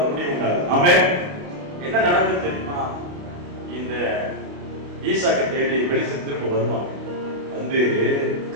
ஒரு முடிவு உண்டாகுது. ஆமென். என்ன நடந்தது தெரியுமா? இந்த ஈசாக்கை தேடி வெளிச்ச திரும்ப வருவாங்க. வந்து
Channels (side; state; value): left; late; 29 ms